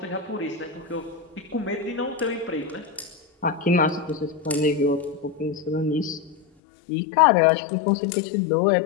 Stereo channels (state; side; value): drops out; right; at 6.5 s